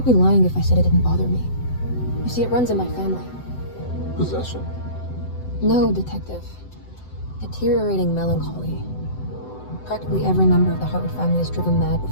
be lying if I said it didn't bother me. You see, it runs in my family. Possession? No, detective. Deteriorating melancholy. Practically every member of the Hartwood family is driven mad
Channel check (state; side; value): late; right; 7.9 ms